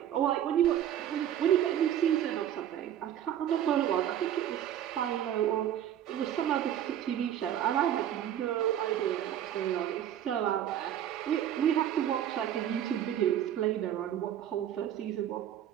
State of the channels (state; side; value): quieter; left; 10.8 dB